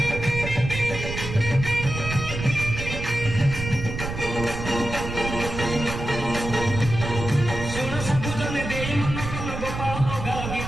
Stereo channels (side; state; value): right; noise; rumble, 6 dB below the sound